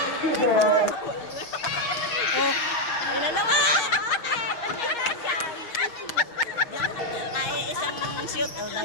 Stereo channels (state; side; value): late; right; 6.2 ms